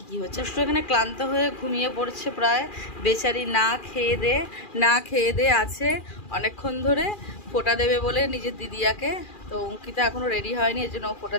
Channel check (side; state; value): right; late; 2.4 ms